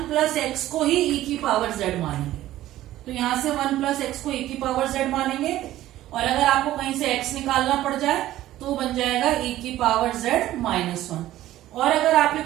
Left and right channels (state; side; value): quieter; left; 14.4 dB